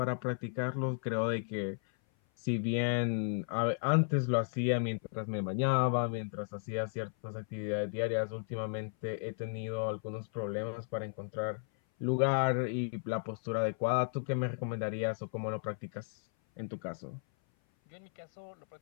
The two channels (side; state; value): right; silent; 55 dB below the other